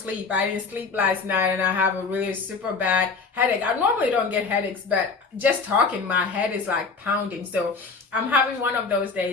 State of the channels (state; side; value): quieter; right; 4.5 dB